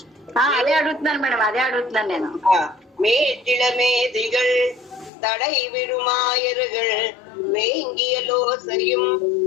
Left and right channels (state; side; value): drops out; right; at 5.1 s